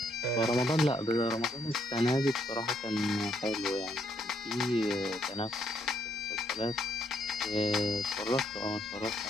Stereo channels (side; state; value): both; normal; correlation 0.72